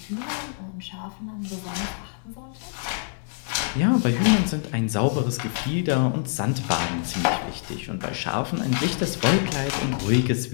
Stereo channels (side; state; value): right; silent; 61 dB below the other